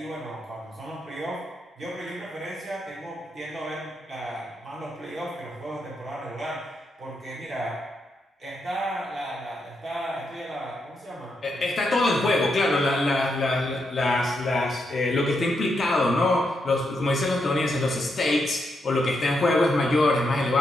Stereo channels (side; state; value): both; normal; correlation 0.82